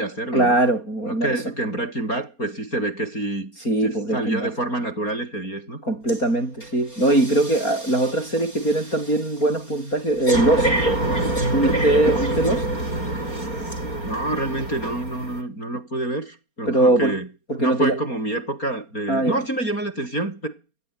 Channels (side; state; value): right; late; 4.3 ms